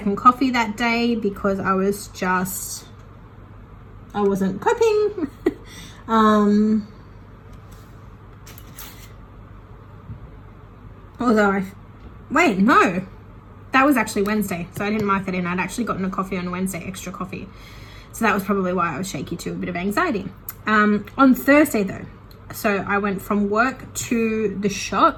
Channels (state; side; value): identical; both; correlation 1.00